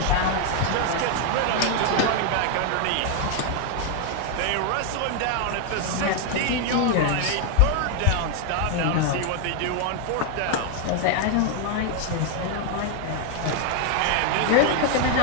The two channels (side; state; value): both; different; correlation 0.00